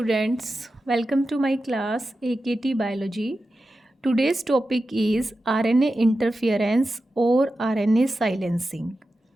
welcome to my class AKT Biology. Today's topic is RNA interference or RNA silencing.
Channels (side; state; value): both; normal; correlation 0.92